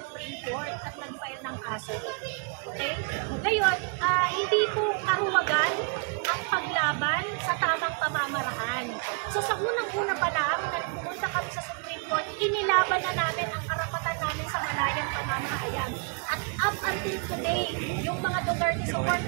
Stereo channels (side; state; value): left; quieter; 37.5 dB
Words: Court at nag-file ng kaso. Okay? Ngayon, hindi po karuwagan ang paglaban sa tamang pamamaraan. So sa unang-una pa lang, nagpumunta kami sa Supreme Court, inilaban na namin ang karapatan namin sa malayang pamamahayag. At up until today, yung mga Duterte